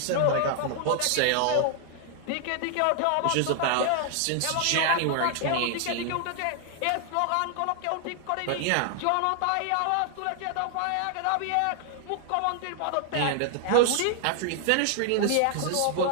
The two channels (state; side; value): different; both; correlation 0.00